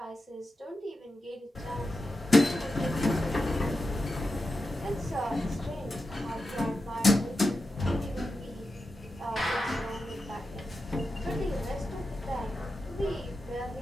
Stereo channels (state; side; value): normal; both; correlation 0.90